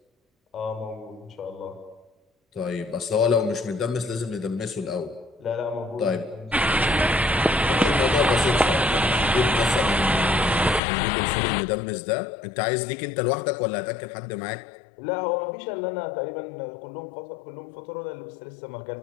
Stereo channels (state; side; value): drops out; right; at 10.8 s